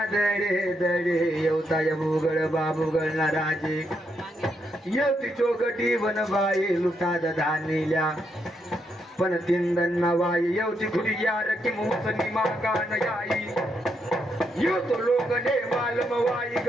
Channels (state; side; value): normal; both; correlation 0.79